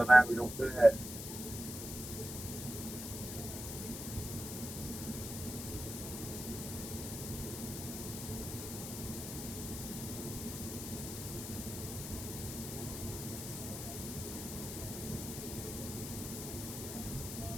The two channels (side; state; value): left; noise; hiss, 7 dB below the sound